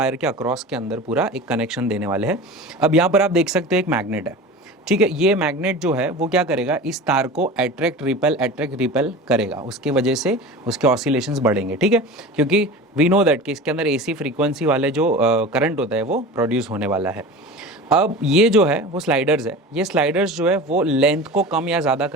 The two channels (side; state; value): both; normal; correlation 0.34